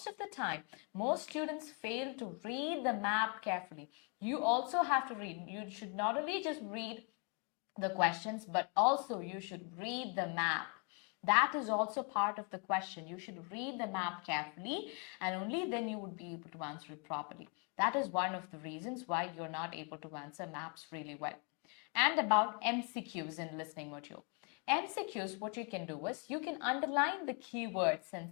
of the time, most students fail to read the map carefully. You also have to read. You should not only just read the questions, but also you should read the map. That is also part of the question. You should read the map carefully, and only then you would be able to answer it properly. That is one of the reasons why you're not able to answer maps really well. And about MCQs in listening module. MCQs, what you can do is you can underline the keywords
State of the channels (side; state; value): right; quieter; 35.4 dB